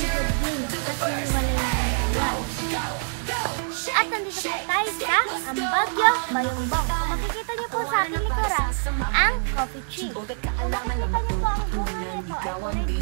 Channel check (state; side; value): silent; left; 62 dB below the other